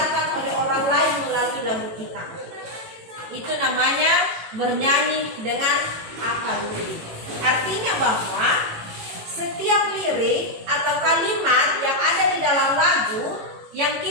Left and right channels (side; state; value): left; late; 18 ms